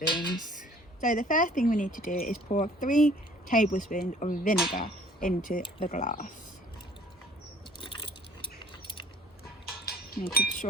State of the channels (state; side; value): normal; both; correlation 0.55